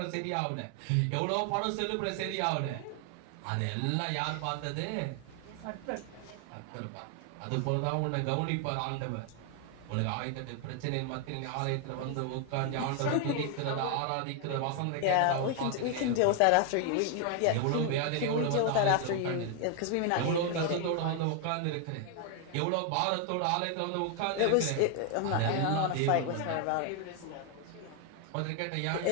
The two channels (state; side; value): different; both; correlation 0.00